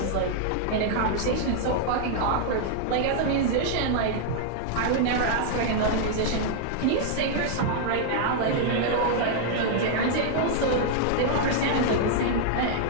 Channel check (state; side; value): different; both; correlation -0.01